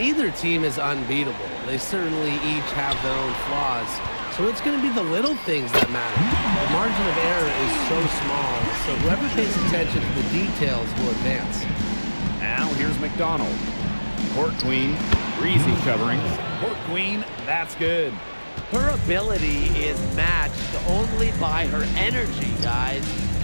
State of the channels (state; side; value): inverted; both; correlation -1.00